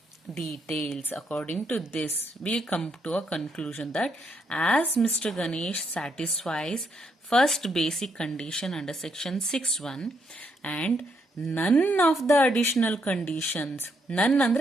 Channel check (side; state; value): both; normal; correlation 0.76